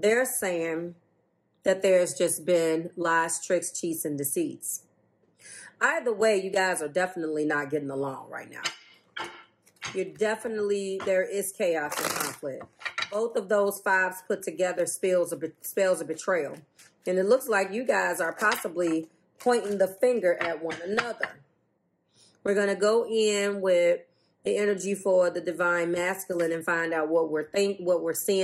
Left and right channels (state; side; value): identical; both; correlation 1.00